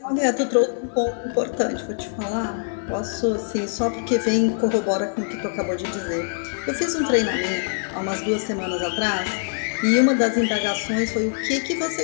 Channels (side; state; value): right; silent; digital silence